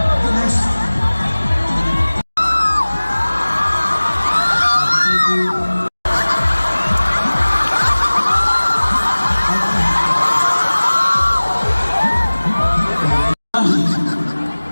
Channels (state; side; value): inverted; both; correlation -1.00